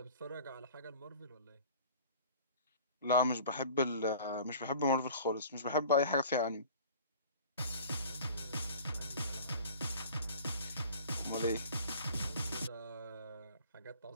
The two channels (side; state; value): both; inverted; correlation -0.45